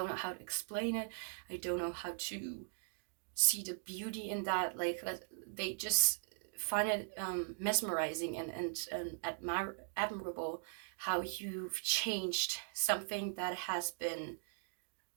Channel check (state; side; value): silent; left; digital silence